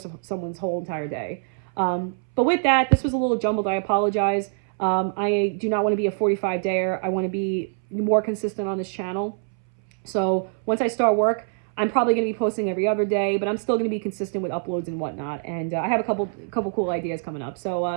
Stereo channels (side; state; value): left; silent; 62 dB below the other